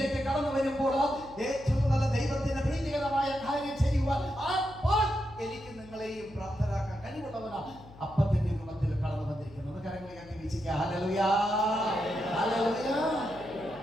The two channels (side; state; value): left; noise; hum, 20 dB below the sound